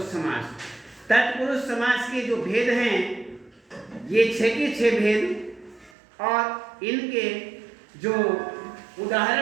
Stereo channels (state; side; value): drops out; left; at 5.9 s